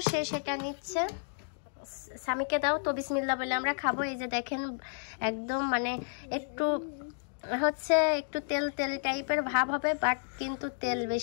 সে সেটা নিচ্ছে। স্বামীকে দাও তো, বিসমিল্লাহ বলে আমরা খাবো। এই যে দেখেন একদম মানে একটু হচ্ছে একটু তেল টাইপের ভাব হবে, বাট কিন্তু তেল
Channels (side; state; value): right; silent; digital silence